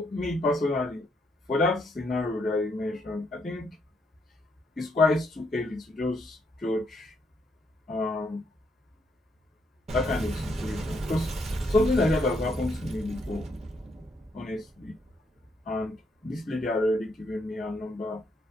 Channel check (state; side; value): normal; both; correlation 0.75